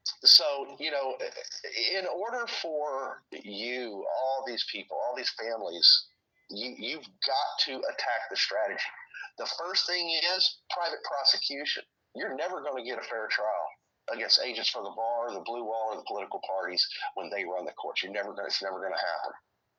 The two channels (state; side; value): identical; both; correlation 1.00